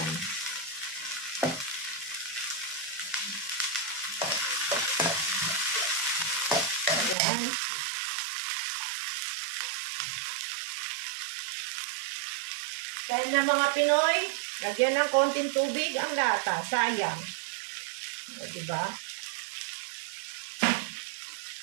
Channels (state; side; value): drops out; left; at 7.2 s